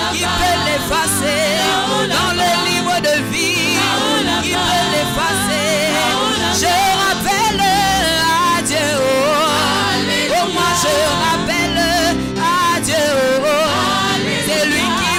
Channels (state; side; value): identical; both; correlation 1.00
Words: Qui peut l'effacer? Dans le livre de vie. Qui peut l'effacer? Je rappelle à Dieu. Oh, moi je rappelle à Dieu. C'est lui qui